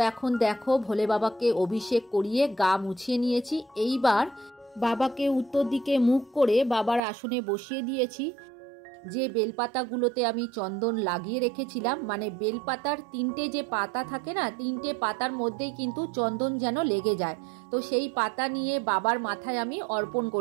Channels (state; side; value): drops out; left; at 7.0 s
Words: এখন দেখো ভোলে বাবাকে অভিষেক করিয়ে গা মুছিয়ে নিয়েছি। এইবার বাবাকে উত্তর দিকে মুখ করে বাবার আসনে বসিয়ে দিয়েছি। যে বেলপাতাগুলোতে আমি চন্দন লাগিয়ে রেখেছিলাম, মানে বেলপাতার 3টে যে পাতা থাকে না, 3টে পাতার মধ্যেই কিন্তু চন্দন যেন লেগে যায়, তো সেই পাতা নিয়ে বাবার মাথায় আমি অর্পণ